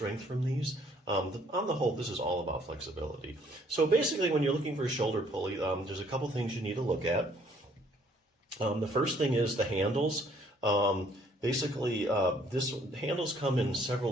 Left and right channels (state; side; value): normal; both; correlation 0.63